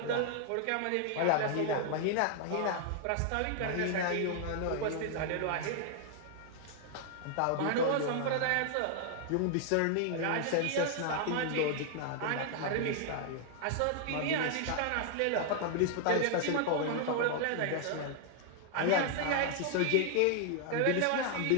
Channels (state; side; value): different; both; correlation 0.00